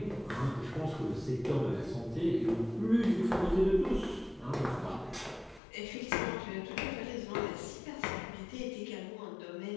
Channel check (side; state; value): right; drops out; at 5.6 s